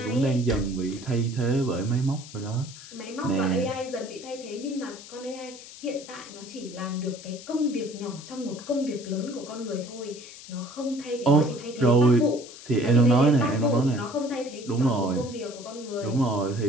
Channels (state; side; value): noise; left; hiss, 16 dB below the sound